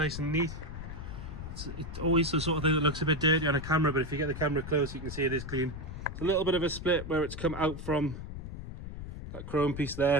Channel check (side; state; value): left; noise; rumble, 9 dB below the sound